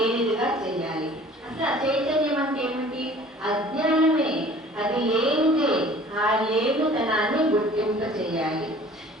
చేయాలి. అసలు అచైతన్యం అంటే ఏమిటి? అజ్ఞానమే. అది లేనిదే. ఆ లేనితనాన్ని గుర్తింప చేయాలి.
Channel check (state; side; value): normal; both; correlation 0.49